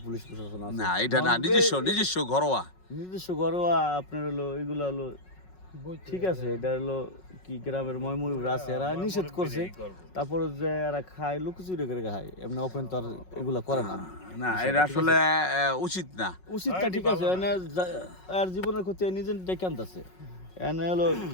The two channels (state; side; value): late; right; 5.4 ms